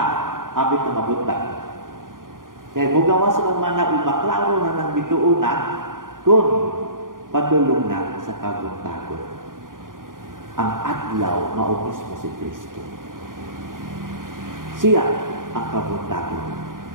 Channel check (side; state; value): left; late; 0.90 ms